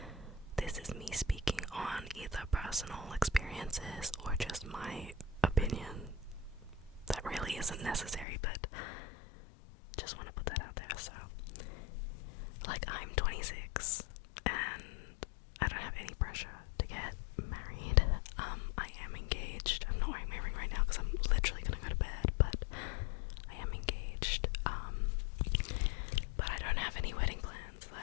this is me speaking on either personal experiences or just my opinion. That really isn't necessary, but just want to put that out there. So, like, I'm 26 and I don't have any pressure to get married. I am engaged. I'm not wearing my ring right now because I'm literally gonna go to bed, but I am engaged. But I don't have any wedding plans.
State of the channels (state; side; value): drops out; right; at 8.2 s